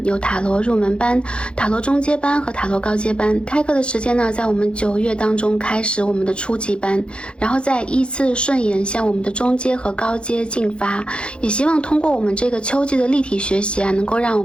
有塔罗入门班、塔罗中阶班和塔罗高阶班。开课的时间呢在我们9月当中开始我们的初级班，然后再依次顺延向我们的中阶和高阶进发。也希望通过我们这个秋季的立体学习啊，能够让我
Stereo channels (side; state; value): right; late; 0.056 ms